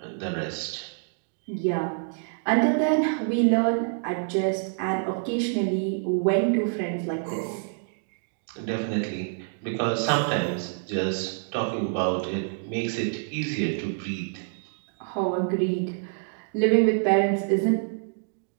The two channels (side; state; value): left; silent; digital silence